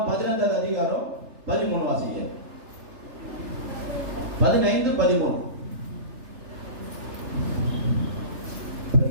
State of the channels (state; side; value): late; left; 3.3 ms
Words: 15 அதிகாரம் 13 வாசிங்க. 15:13.